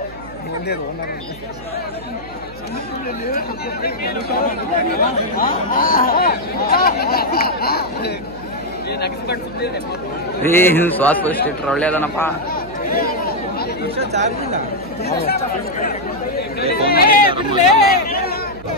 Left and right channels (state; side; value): noise; right; hum, 17 dB below the sound